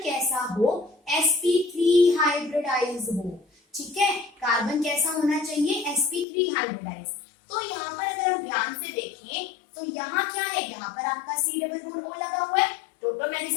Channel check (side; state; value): right; drops out; at 6.2 s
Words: कैसा हो, sp3 हाइब्रिडाइज हो। ठीक है, कार्बन कैसा होना चाहिए, sp3 हाइब्रिडाइज। तो यहाँ पर अगर हम ध्यान से देखें तो यहाँ क्या है, यहाँ पर आपका C डबल बॉन्ड O लगा हुआ है,